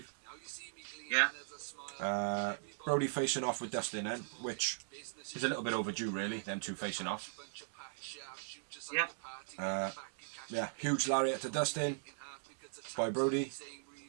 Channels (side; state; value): left; silent; digital silence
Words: Yeah. Brody facing off with Dustin then, which is a little bit overdue, really, them two facing off. Yeah. Huge lariat to Dustin by Brody.